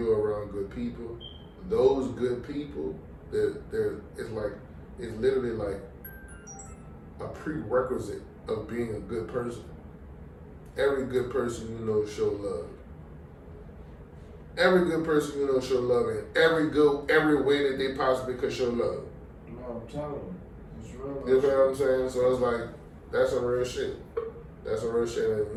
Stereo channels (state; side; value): identical; both; correlation 1.00